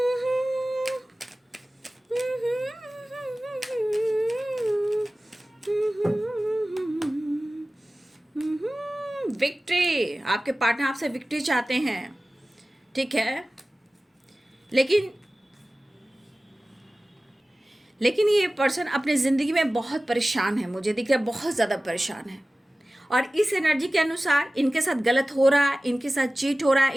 विक्ट्री, आपके पार्टनर आपसे विक्ट्री चाहते हैं, ठीक है। लेकिन ये पर्सन अपनी ज़िंदगी में बहुत परेशान है, मुझे दिख रहा है बहुत ज़्यादा परेशान है, और इस एनर्जी के अनुसार इनके साथ गलत हो रहा है, इनके साथ चीट हो रहा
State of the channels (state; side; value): normal; both; correlation 0.97